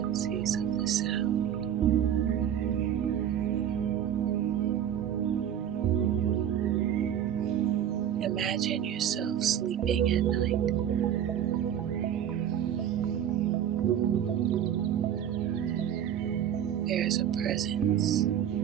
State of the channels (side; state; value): left; quieter; 9.8 dB